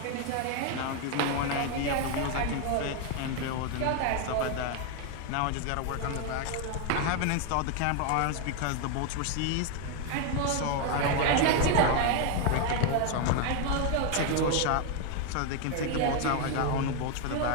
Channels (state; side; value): different; both; correlation 0.01